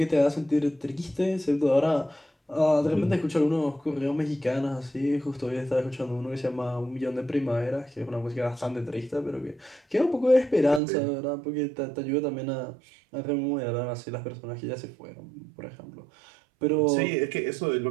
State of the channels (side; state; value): left; drops out; at 10.8 s